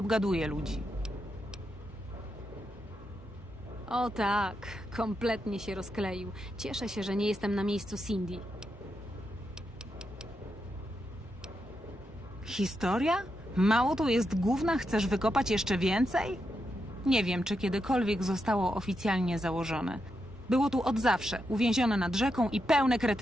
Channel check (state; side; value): normal; both; correlation 0.84